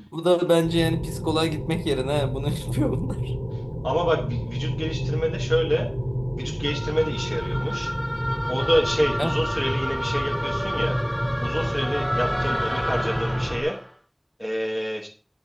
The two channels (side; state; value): both; identical; correlation 1.00